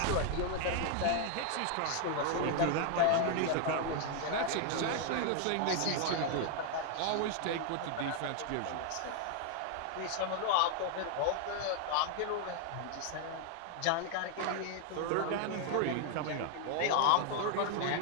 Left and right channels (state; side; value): different; both; correlation 0.00